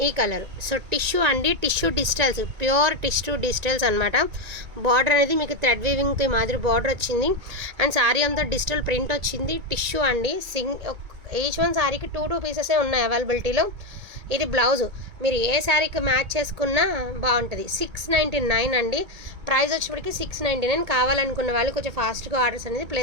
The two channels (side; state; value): left; late; 2.2 ms